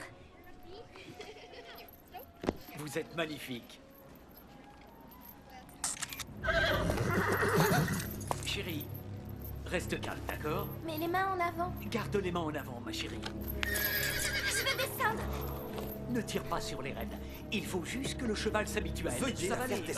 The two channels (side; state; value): both; identical; correlation 1.00